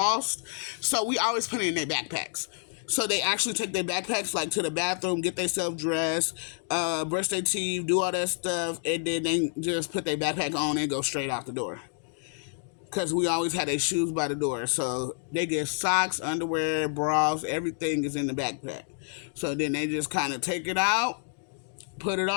so we always put it in their backpacks. So they actually take their backpacks like to the bathroom, get themselves dressed, brush their teeth, do all that stuff, and then they just put their backpack on and go straight out the door. Because we always had their shoes by the door. So they get socks, underwear, bras, everything is in the backpack. So then they just kind of take it out, put it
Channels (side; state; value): right; silent; 59 dB below the other